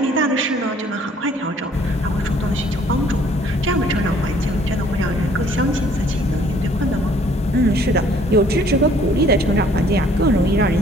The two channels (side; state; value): both; normal; correlation 0.59